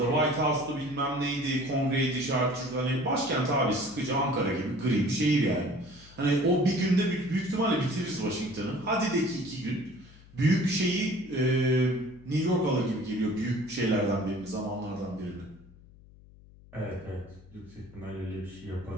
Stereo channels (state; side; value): noise; left; hum, 23 dB below the sound